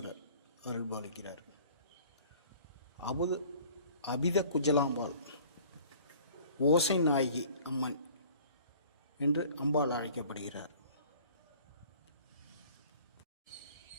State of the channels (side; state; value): both; inverted; correlation -0.50